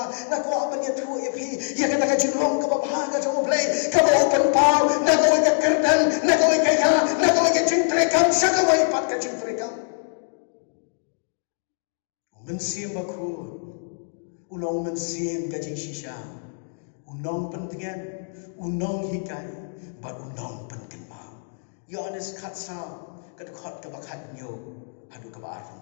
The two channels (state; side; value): silent; right; digital silence